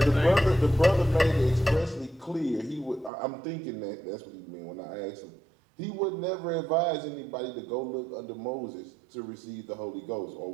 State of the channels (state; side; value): drops out; left; at 3.1 s